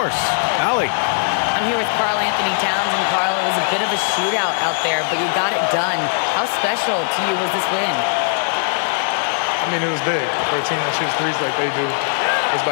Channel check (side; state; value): right; silent; digital silence